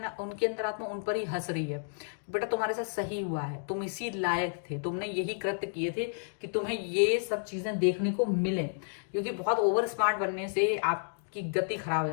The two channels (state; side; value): silent; right; digital silence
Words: उनकी अंतरात्मा उन पर ही हंस रही है, बेटा तुम्हारे साथ सही हुआ है, तुम इसी लायक थे, तुमने यही कृत्य किए थे कि तुम्हें ये सब चीजें देखने को मिले। क्योंकि बहुत ओवर स्मार्ट बनने से आपकी गति खराब हो